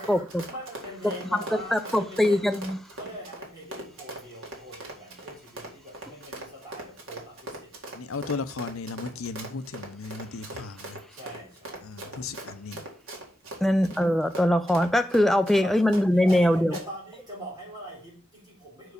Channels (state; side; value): normal; both; correlation 0.86